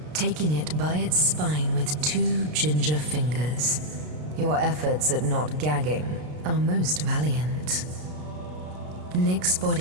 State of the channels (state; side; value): late; left; 33 ms